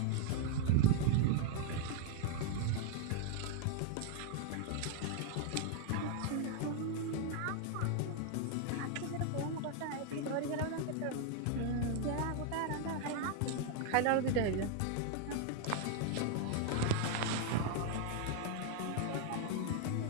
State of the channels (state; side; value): different; both; correlation 0.01